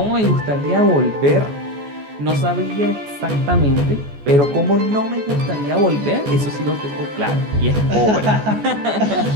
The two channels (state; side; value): late; left; 14 ms